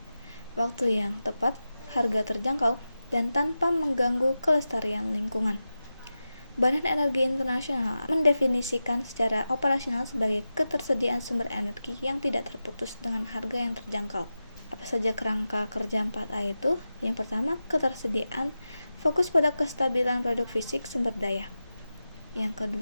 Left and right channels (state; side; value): inverted; both; correlation -0.93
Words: waktu yang tepat, harga terjangkau, dan tanpa mengganggu kelestarian lingkungan. Badan Energi Internasional mendefinisikan secara operasional sebagai ketersediaan sumber energi yang tidak terputus dengan harga yang terjangkau. Apa saja kerangka kerja 4A itu? Yang pertama, ketersediaan, fokus pada kestabilan produk fisik sumber daya. Yang